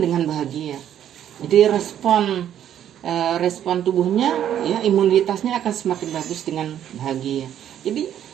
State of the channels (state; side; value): quieter; left; 10.4 dB